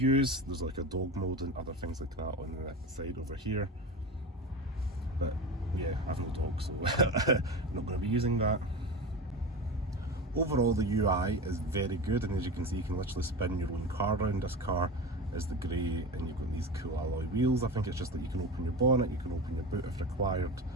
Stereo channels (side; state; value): both; normal; correlation 0.26